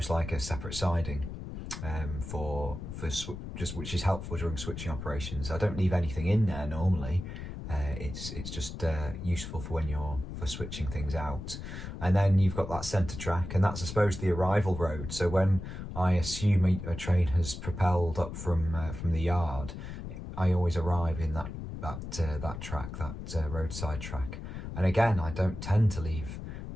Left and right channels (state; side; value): noise; left; rumble, 8 dB below the sound